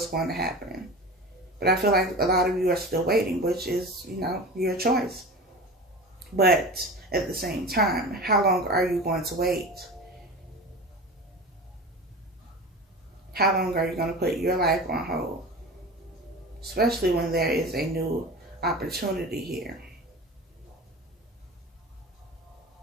going to happen. But I feel like a lot of you are still waiting, which is, you know, your choice. But at the same time, how long are you going to wait? How long are you going to put your life on hold? Especially when there is a new opportunity here.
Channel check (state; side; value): normal; both; correlation 0.32